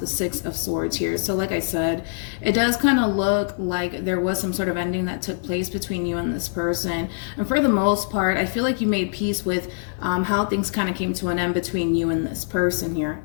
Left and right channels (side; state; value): right; silent; 63 dB below the other